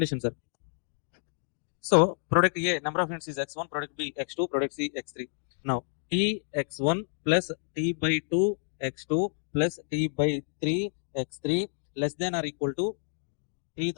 sir? So product A number of units is x1, product B x2, product C x3. Now T x1 plus T by 2 x2 plus T by 3 x3 less than or equal to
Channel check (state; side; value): silent; right; digital silence